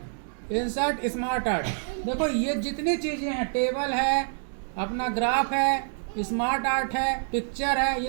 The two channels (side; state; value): left; silent; 60 dB below the other